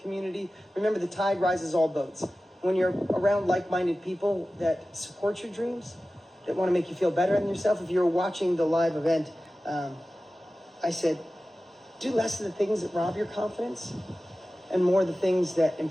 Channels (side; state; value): both; normal; correlation 0.96